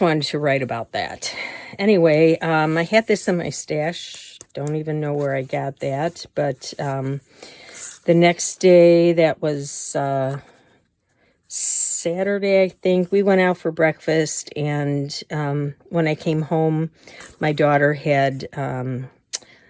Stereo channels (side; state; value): both; identical; correlation 1.00